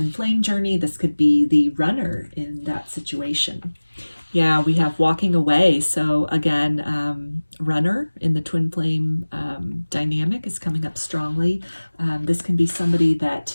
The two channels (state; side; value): inverted; both; correlation -1.00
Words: flame journey, this could be the runner in that situation. Yeah, we have walking away. So again, runner in the twin flame dynamic is coming up strongly. This can be somebody that